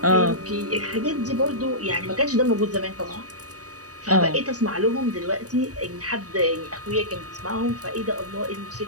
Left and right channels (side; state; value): left; late; 0.67 ms